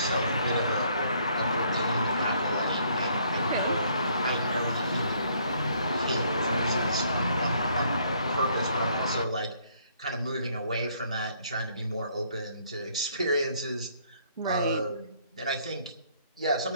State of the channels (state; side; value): inverted; both; correlation -0.66